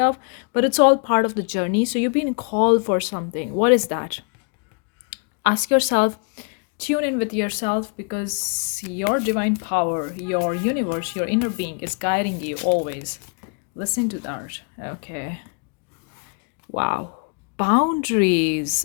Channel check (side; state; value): right; quieter; 38.0 dB